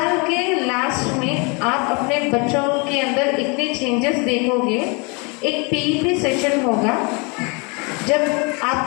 के last में आप अपने बच्चों के अंदर इतने changes देखोगे. एक पीईपी सेशन होगा जब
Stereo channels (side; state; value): right; quieter; 31.3 dB